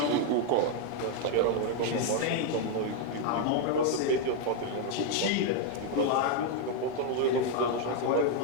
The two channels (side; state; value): both; different; correlation 0.01